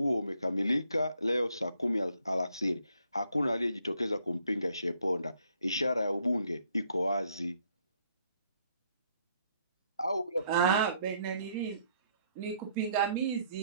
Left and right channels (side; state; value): both; inverted; correlation -0.68